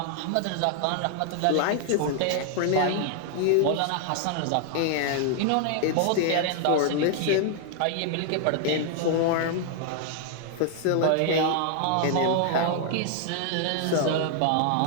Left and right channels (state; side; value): different; both; correlation 0.00